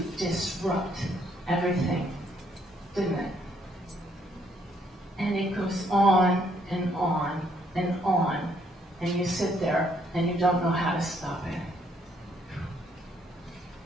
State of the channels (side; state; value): both; normal; correlation 0.69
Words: disrupt everything, didn't it? And it goes on and on and on, and you sit there and you don't know how to stop it.